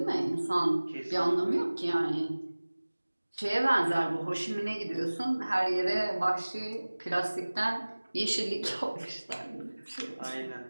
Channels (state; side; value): inverted; both; correlation -1.00